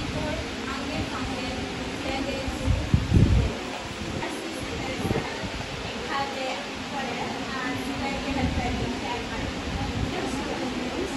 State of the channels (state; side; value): identical; both; correlation 1.00